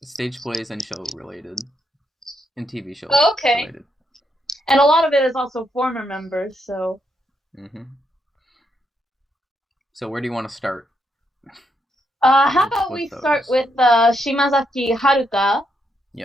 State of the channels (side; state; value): both; normal; correlation 0.79